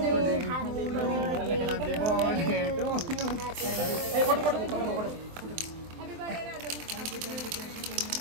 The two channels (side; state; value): left; late; 23 ms